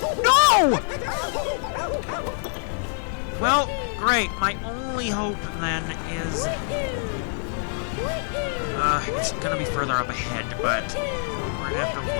No! Well, great. My only hope, then, is... it's gonna be further up ahead, but we're gonna have to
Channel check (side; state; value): right; silent; 62 dB below the other